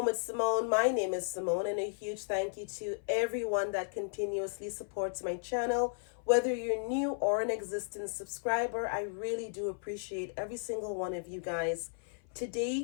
with Simone. My name is Simone, and a huge thank you to everyone that continuously supports my channel. Whether you're new or an existing subscriber, I really do appreciate every single one of you guys.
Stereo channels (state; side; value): silent; right; 55 dB below the other